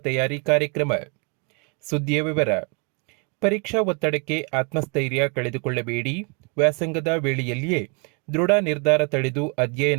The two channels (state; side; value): quieter; left; 34.8 dB